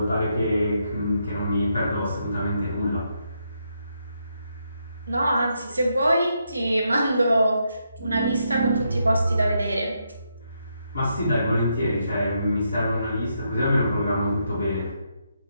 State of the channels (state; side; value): inverted; both; correlation -0.80